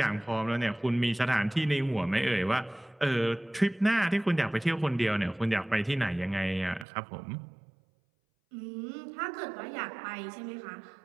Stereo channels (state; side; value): drops out; left; at 6.9 s